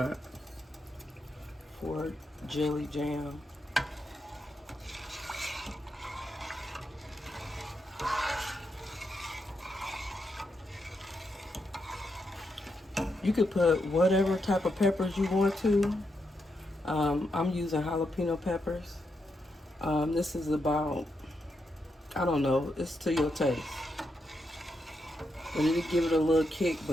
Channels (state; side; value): normal; both; correlation 0.83